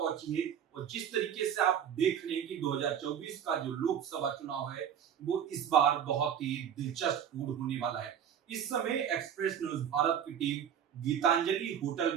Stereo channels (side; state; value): left; quieter; 8.9 dB